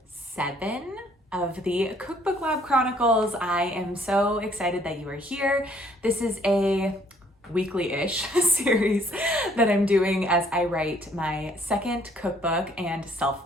7 of the Cookbook Lab Chronicles. I am so excited that you are here. This is a weekly-ish series that I'm doing as I write my second cookbook and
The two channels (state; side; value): normal; both; correlation 0.63